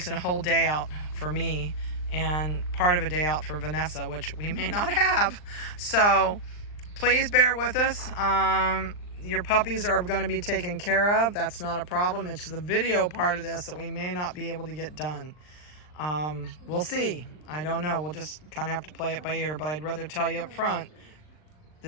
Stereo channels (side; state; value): right; late; 39 ms